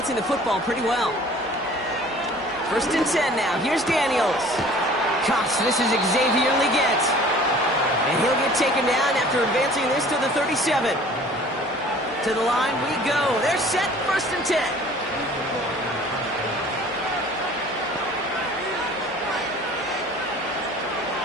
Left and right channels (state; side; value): normal; both; correlation 0.49